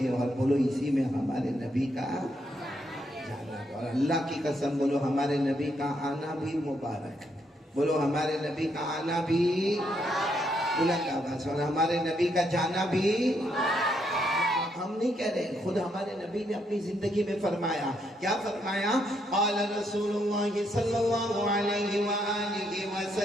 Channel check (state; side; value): normal; both; correlation 0.76